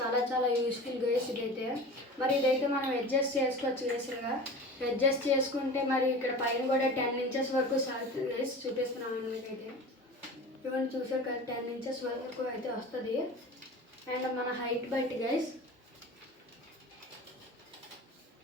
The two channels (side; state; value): both; normal; correlation 0.35